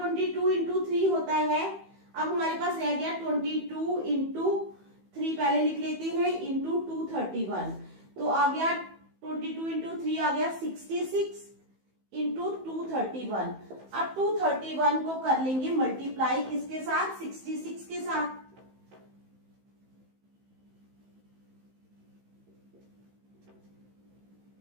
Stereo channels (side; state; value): left; late; 15 ms